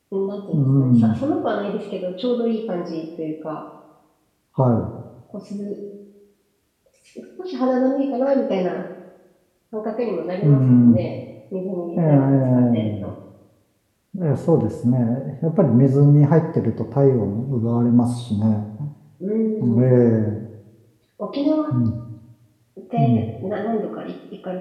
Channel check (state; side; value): identical; both; correlation 1.00